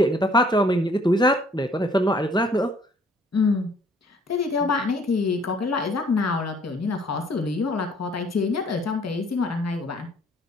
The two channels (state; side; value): normal; both; correlation 0.60